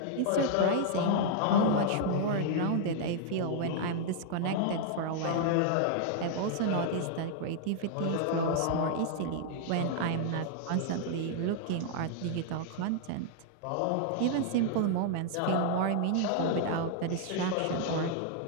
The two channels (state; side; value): different; both; correlation -0.01